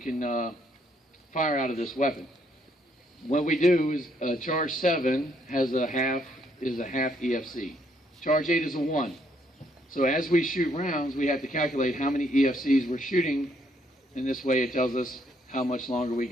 fire out of this weapon. What we do is charge 7 is a half EFC. Charge 8 is a 1. So as we shoot rounds, we have to calculate how many EFCs we're shooting. In this way, it tells us how much longer we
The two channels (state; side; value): normal; both; correlation 0.71